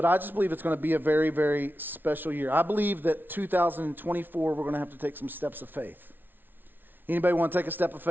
I just believe it's going to be a very, very special year. I believe that 2024, we're going to have to take some steps of faith. Anybody want to take a step of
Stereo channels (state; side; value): late; left; 0.093 ms